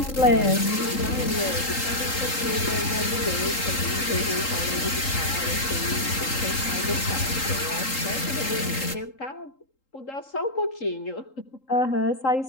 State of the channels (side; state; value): right; late; 3.8 ms